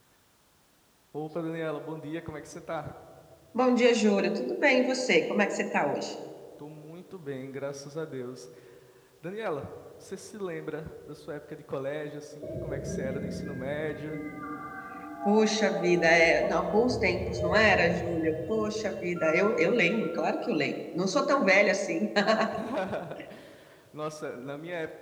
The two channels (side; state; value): both; identical; correlation 1.00